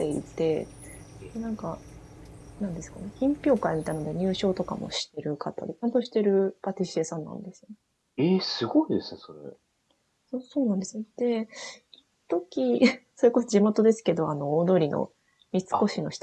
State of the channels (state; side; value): identical; both; correlation 1.00